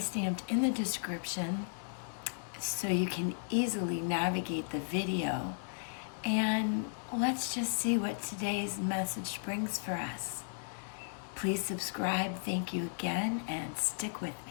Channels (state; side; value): silent; right; digital silence